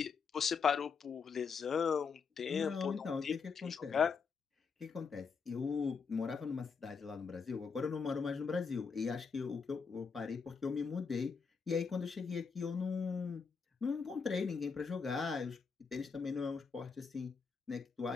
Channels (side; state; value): right; quieter; 5.5 dB